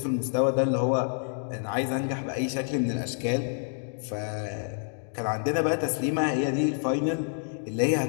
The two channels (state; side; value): silent; right; digital silence